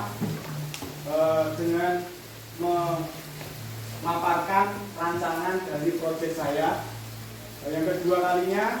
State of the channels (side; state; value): both; identical; correlation 1.00